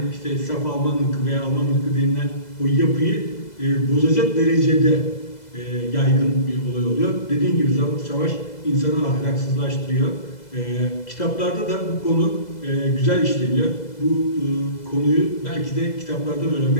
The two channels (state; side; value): late; right; 2.0 ms